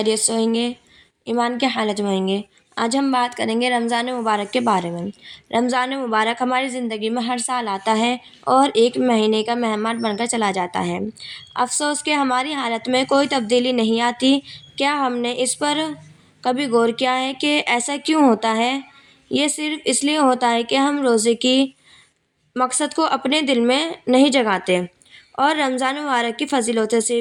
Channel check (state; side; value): identical; both; correlation 1.00